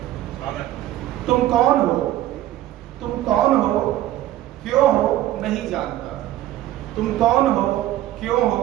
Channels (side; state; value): left; quieter; 14.0 dB